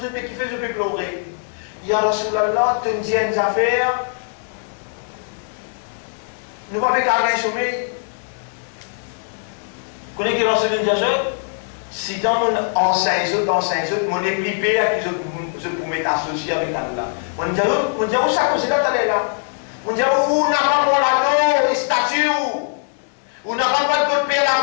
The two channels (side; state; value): right; silent; digital silence